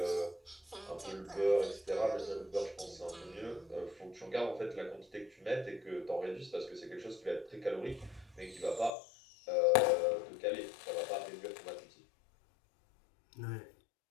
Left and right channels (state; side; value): drops out; right; at 9.0 s